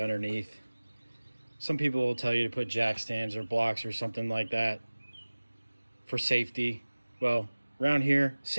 Some people will tell you to put jack stands or blocks or something like that for safety. Well, around here,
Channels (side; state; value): both; inverted; correlation -1.00